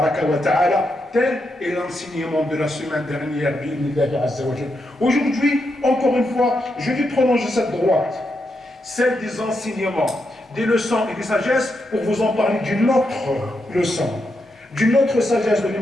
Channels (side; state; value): both; normal; correlation 0.83